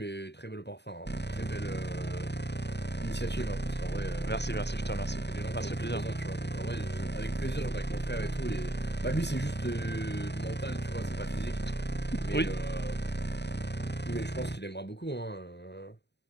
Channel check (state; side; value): late; right; 0.50 ms